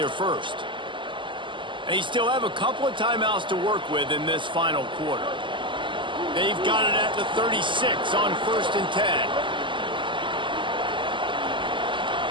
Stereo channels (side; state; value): left; late; 0.24 ms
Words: first. They still have a couple of timeouts to work with in this final quarter. They've got it at the 36 on first and 10.